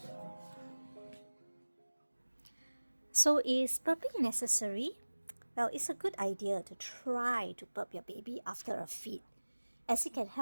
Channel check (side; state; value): both; inverted; correlation -1.00